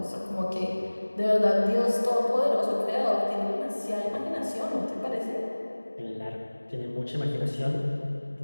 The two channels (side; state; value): both; inverted; correlation -1.00